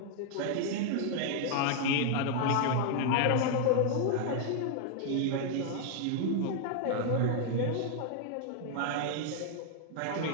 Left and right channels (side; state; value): both; different; correlation 0.00